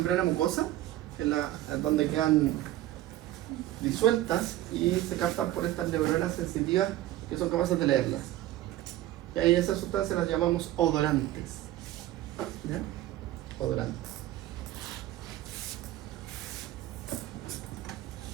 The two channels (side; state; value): left; quieter; 14.7 dB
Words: mucosa, donde quedan disueltas y se captan por estas neuronas sensitivas que son capaces de leerlas. Y ahí esas sustancias las llamamos odorantes. ¿Ya? Odorantes.